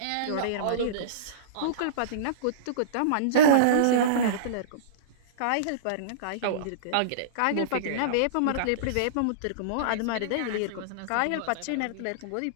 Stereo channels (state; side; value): different; both; correlation -0.05